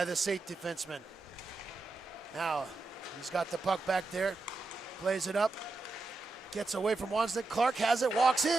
the SAIT defenseman. Now, he's got the puck back there. Plays it up. Gets away from Wozniak. Clark has it, walks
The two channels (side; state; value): left; quieter; 3.4 dB